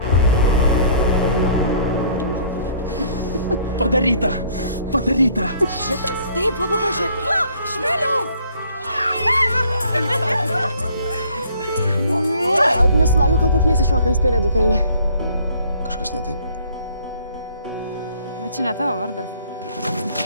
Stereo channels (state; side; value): inverted; both; correlation -0.58